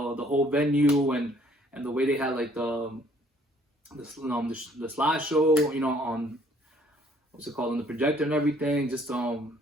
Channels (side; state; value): both; normal; correlation 0.61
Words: venue, and the way they had like the slideshow, you know, on what's it called, on the projector and everything. Just